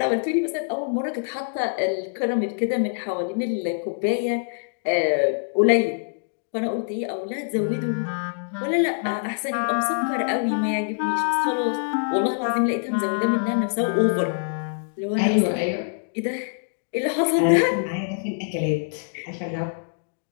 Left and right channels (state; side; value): silent; right; digital silence